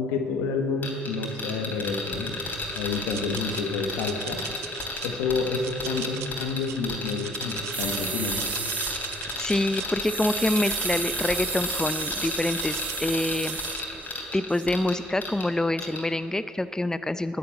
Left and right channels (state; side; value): normal; both; correlation 0.61